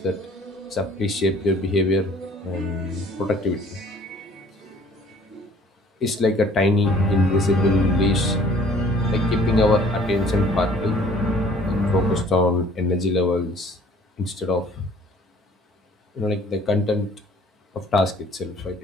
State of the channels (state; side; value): normal; both; correlation 0.54